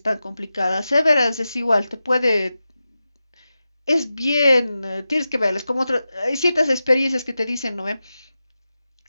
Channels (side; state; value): both; inverted; correlation -0.93